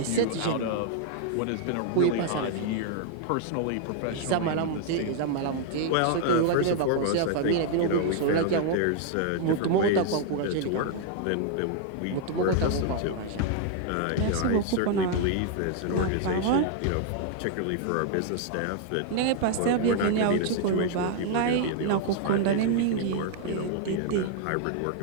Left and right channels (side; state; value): both; different; correlation 0.00